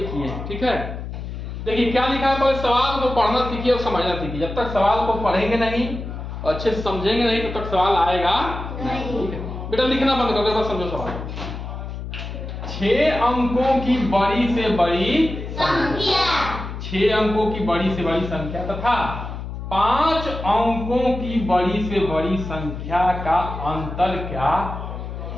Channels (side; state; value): left; noise; hum, 8 dB below the sound